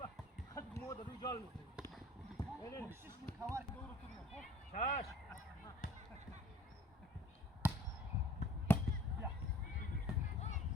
Hadi moda rücal mı? Öyle mi? Kavar doğru tutuyor. Çaş.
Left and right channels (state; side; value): normal; both; correlation 0.50